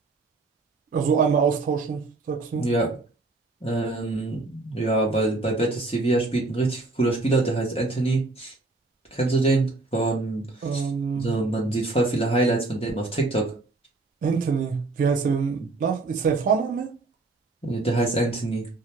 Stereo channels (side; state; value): left; quieter; 3.3 dB